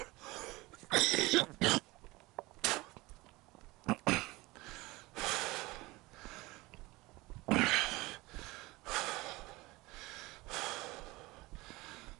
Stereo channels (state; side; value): quieter; left; 21.4 dB